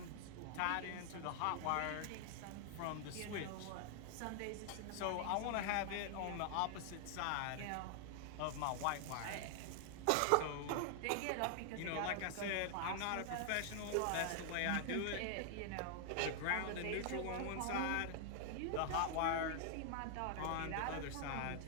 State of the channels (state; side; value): different; both; correlation 0.00